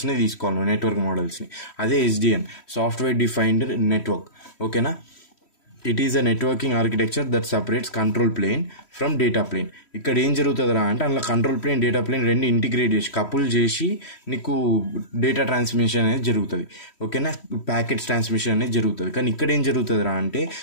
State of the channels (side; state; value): right; late; 3.1 ms